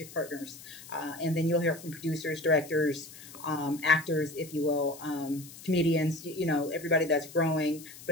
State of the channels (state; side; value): noise; left; hiss, 17 dB below the sound